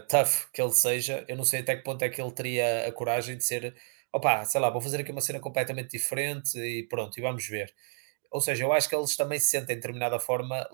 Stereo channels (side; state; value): left; silent; 56 dB below the other